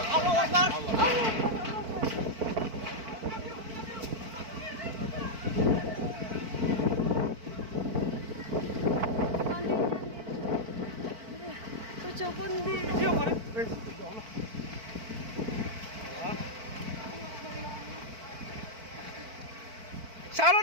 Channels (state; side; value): late; left; 4.5 ms